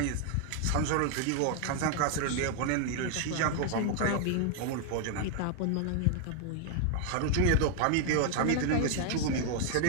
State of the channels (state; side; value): different; both; correlation 0.00